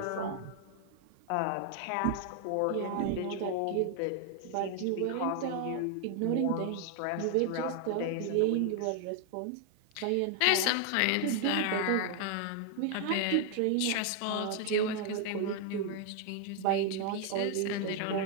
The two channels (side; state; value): both; different; correlation 0.00